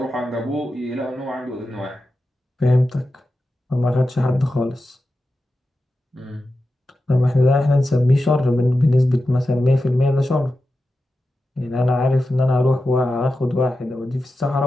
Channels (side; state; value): both; normal; correlation 0.91